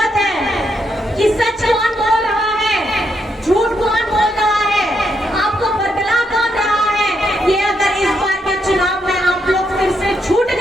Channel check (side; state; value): both; normal; correlation 0.79